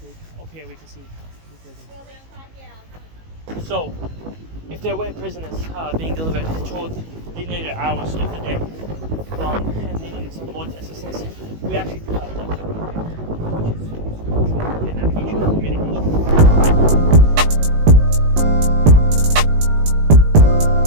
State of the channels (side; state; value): left; late; 19 ms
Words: up here we can see the prison. So, if there were prisoners being delivered toward the later hours of the day, and they needed some more assistance, we actually do have a which is control and navigation and communication.